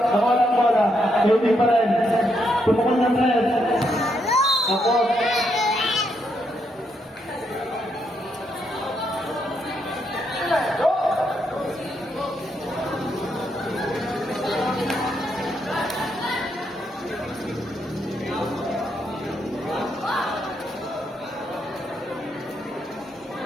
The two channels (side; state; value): both; normal; correlation 0.78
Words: lang bola. Kaili pa rin. Tumukol ng tres. Tapos.